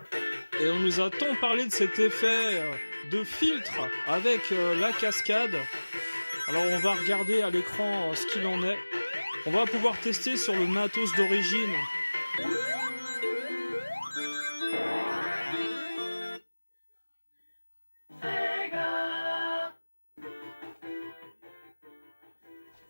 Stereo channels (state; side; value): inverted; both; correlation -1.00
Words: Et on nous a tant parlé de cet effet de filtre avec la cascade. Alors on va regarder à l'écran ce qu'il en est. On va pouvoir tester sur le matos d'origine.